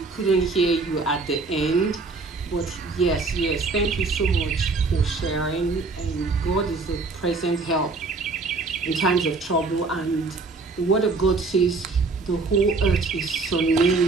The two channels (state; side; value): quieter; left; 4.0 dB